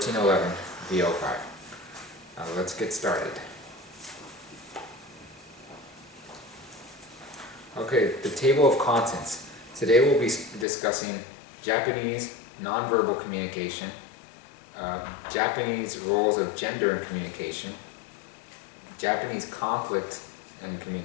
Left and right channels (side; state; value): right; drops out; at 10.7 s